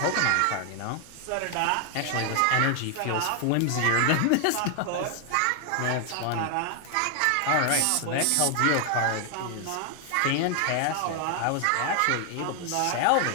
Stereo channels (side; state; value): both; different; correlation 0.00